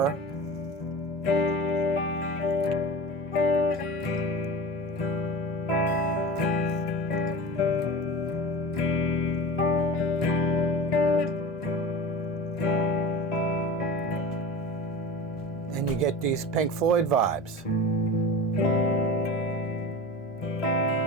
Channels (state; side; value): noise; right; hum, 29 dB below the sound